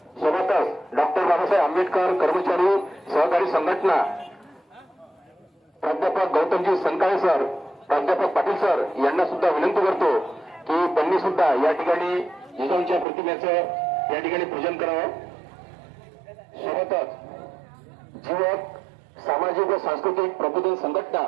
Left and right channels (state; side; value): drops out; left; at 13.1 s